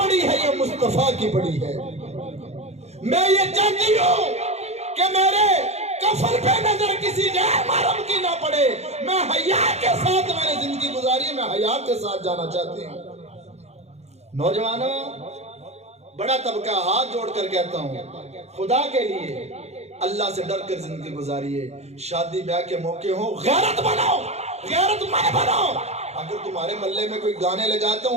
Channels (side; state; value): left; late; 0.31 ms